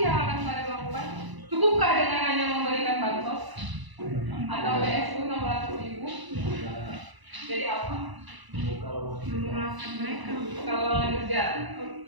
yang akan kalian lakukan? Cukupkah dengan hanya memberikan bansos atau BSU 600.000? Jadi apa? Kalau kerja,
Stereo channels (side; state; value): left; late; 1.0 ms